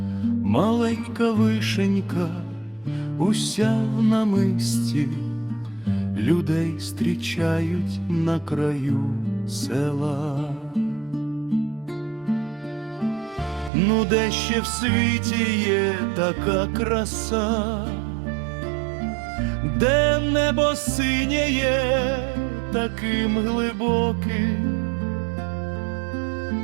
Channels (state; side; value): drops out; left; at 13.7 s